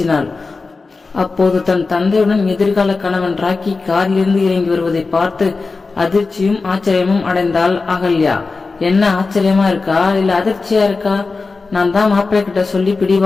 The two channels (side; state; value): right; quieter; 4.0 dB